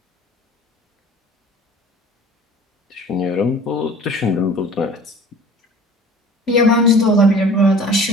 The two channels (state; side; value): normal; both; correlation 0.44